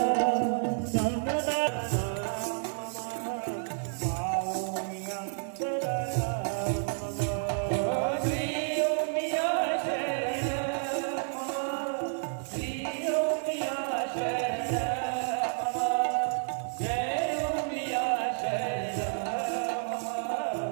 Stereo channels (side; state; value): left; silent; digital silence